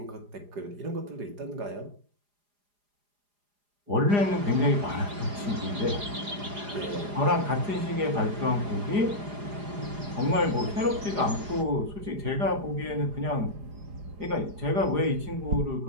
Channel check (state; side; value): late; left; 4.9 ms